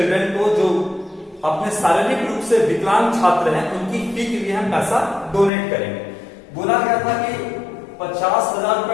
को, जो अपने शारीरिक रूप से विकलांग छात्र हैं, उनकी फी के लिए हम पैसा डोनेट करेंगे। बोला गया था कि 50,000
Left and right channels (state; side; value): drops out; right; at 5.5 s